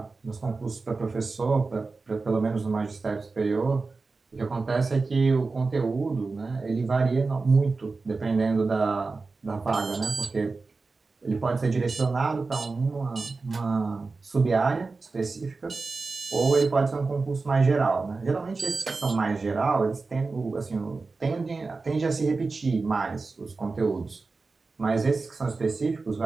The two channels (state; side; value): quieter; left; 4.0 dB